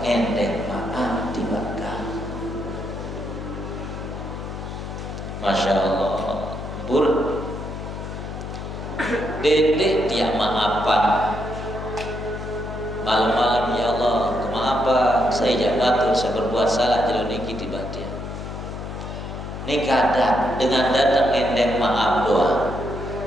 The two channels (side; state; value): left; noise; hum, 8 dB below the sound